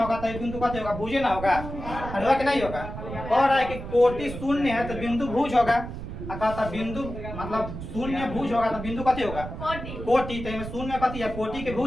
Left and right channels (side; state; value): right; noise; rumble, 9 dB below the sound